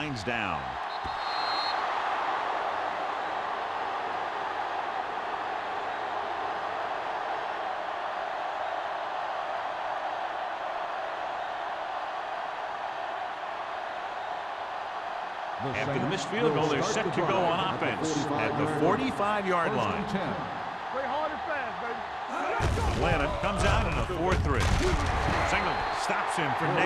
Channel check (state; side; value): identical; both; correlation 1.00